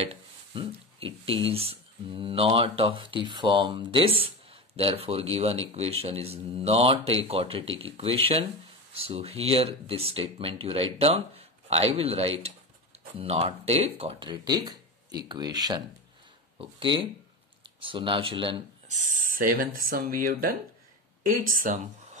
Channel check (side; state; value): both; normal; correlation 0.22